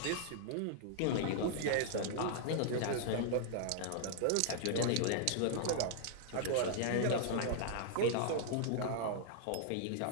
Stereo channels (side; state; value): both; different; correlation -0.01